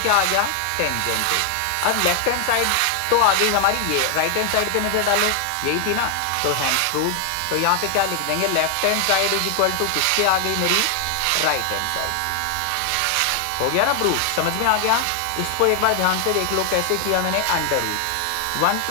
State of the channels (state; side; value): different; both; correlation 0.00